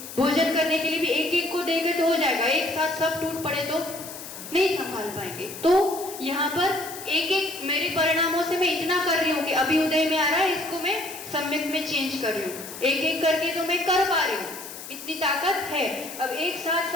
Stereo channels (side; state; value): left; noise; hiss, 12 dB below the sound